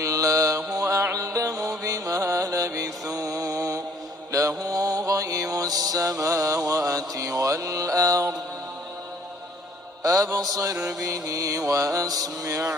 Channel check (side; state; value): both; normal; correlation 0.59